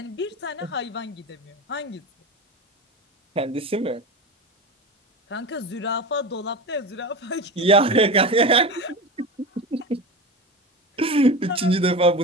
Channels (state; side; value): normal; both; correlation 0.26